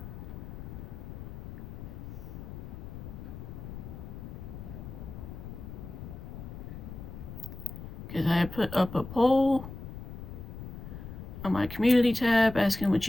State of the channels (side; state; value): left; noise; rumble, 10 dB below the sound